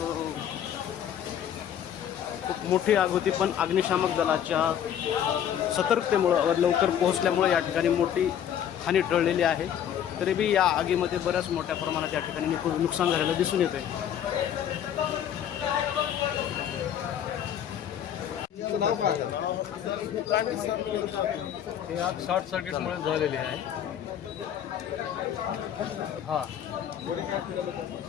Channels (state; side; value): quieter; right; 9.7 dB